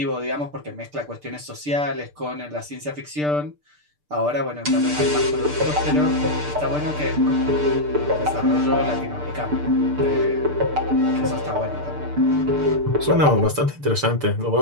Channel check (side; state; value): left; late; 6.7 ms